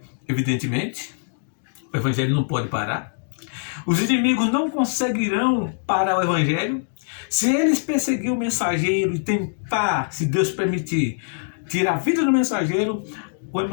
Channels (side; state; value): right; silent; digital silence